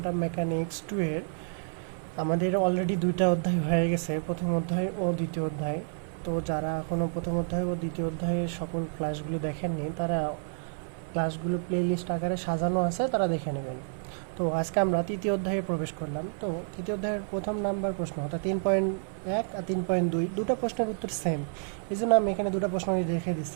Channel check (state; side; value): silent; left; 58 dB below the other